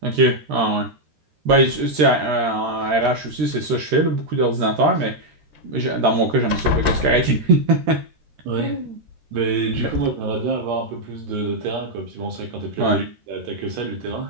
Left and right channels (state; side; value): late; left; 13 ms